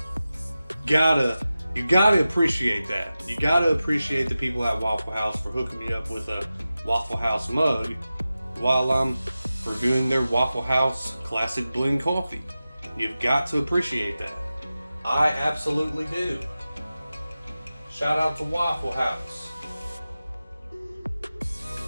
You gotta appreciate that. You gotta appreciate the people at Waffle House for hooking me up with a Waffle House mug while I'm reviewing their Waffle House Classic Blend Coffee. You've got to appreciate that. I absolutely do. Shout out to Waffle House.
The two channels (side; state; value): both; inverted; correlation -0.94